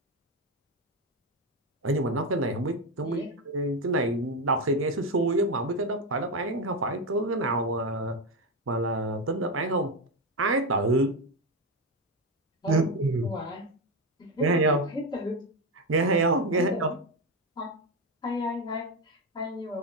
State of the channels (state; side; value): normal; both; correlation 0.11